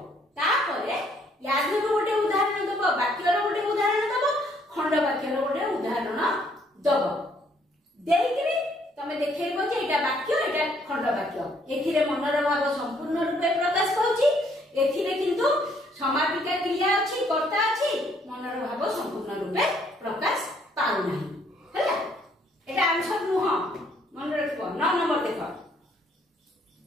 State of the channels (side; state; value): both; normal; correlation 0.66